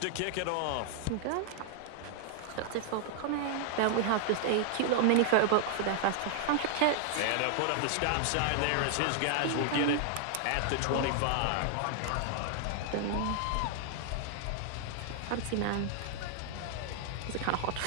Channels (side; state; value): both; different; correlation -0.01